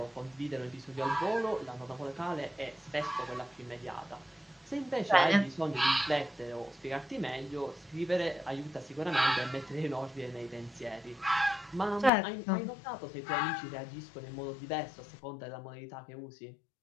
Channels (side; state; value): right; drops out; at 12.1 s